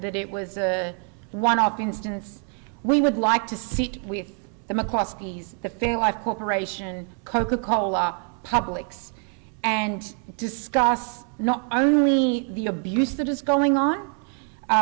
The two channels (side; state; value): left; quieter; 38.3 dB